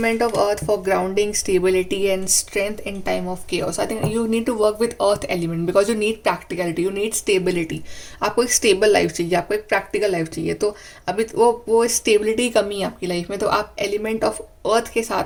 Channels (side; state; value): both; identical; correlation 1.00